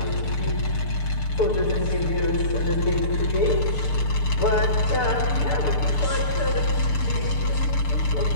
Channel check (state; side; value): late; right; 6.8 ms